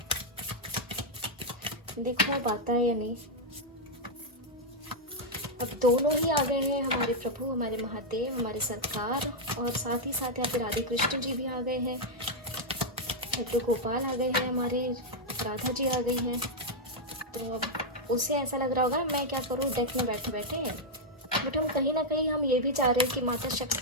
देखो अब आता है या नहीं। अब दोनों ही आ गए हैं, हमारे प्रभु, हमारे महादेव, हमारे सरकार, और साथ ही साथ यहाँ पे राधे कृष्ण जी भी आ गए हैं, लड्डू गोपाल आ गए हैं, हमारे राधा जी आ गई हैं। तो अब उसे ऐसा लग रहा होगा मैं क्या करूँ डेक में बैठे बैठे, बट हम कहीं ना कहीं हम ये भी चाह रहे हैं कि माता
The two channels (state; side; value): normal; both; correlation -0.02